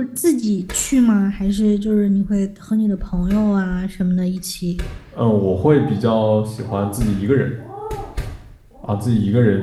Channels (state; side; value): identical; both; correlation 1.00